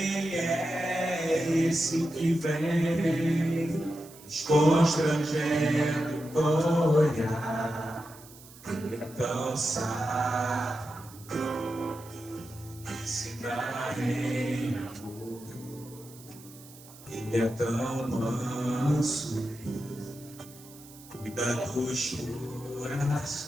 é esse que vem nos constrangendo com o olhar? Ele é tão sábio, ensina em amor. Ele é tão manso, cuida dos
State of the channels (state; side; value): noise; right; hiss, 20 dB below the sound